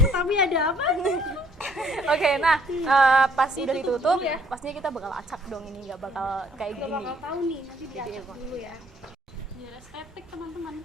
tapi ada apa? Oke, nah pas udah Ditutup ditutup, dulu ya. pastinya kita bakal acak dong ini, nggak bakal kayak Nggak gini. bakal tahu nih, nanti diacak dulu ya. Biar estetik teman-teman.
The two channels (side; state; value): both; normal; correlation 0.63